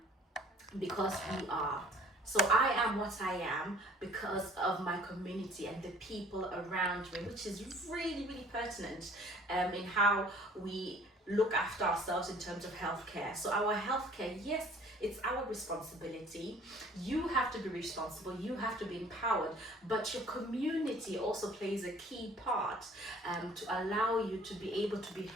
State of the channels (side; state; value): both; normal; correlation 0.54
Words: because we are. So I am what I am because of my community and the people around me, which is really, really pertinent in how we look after ourselves in terms of healthcare. So our healthcare, yes, it's our responsibility. You have to be responsible, you have to be empowered, but your community also plays a key part to allow you to be able to be